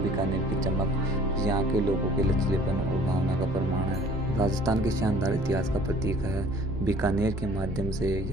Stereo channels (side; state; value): both; normal; correlation 0.52